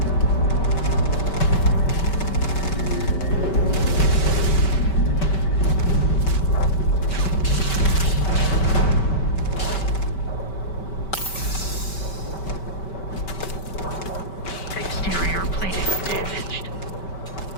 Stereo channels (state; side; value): late; right; 5.2 ms